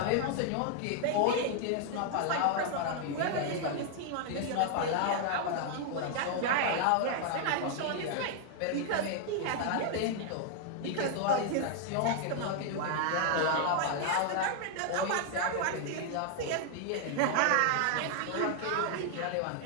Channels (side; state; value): both; different; correlation 0.00